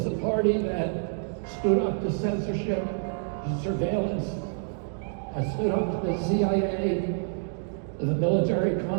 the party that stood up to censorship, to surveillance, stood up to the CIA, the military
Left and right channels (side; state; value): left; silent; digital silence